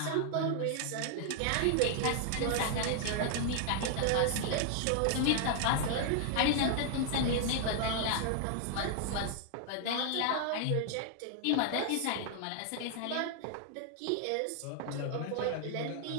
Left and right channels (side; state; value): both; different; correlation 0.00